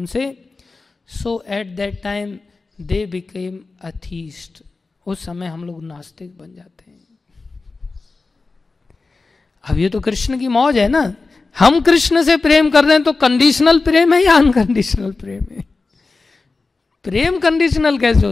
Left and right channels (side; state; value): right; quieter; 3.8 dB